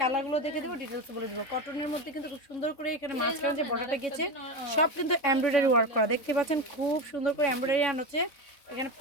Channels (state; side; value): late; right; 3.6 ms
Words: কালারগুলো দেখে দেবো, ডিটেলস বলে দেবো। কটনের মধ্যে কিন্তু খুব সুন্দর করে এখানে মাঝখানে যে বর্ডারটা গেছে সব কিন্তু এমব্রয়ডারি ওয়ার্ক করা, দেখতে পাচ্ছেন। খুব সুন্দর করে এমব্রয়ডারি আন হচ্ছে, এখানে